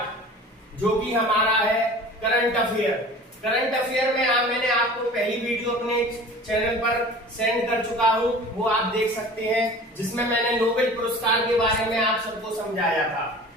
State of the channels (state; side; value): normal; both; correlation 0.41